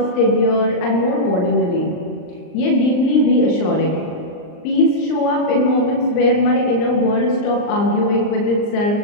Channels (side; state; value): right; late; 39 ms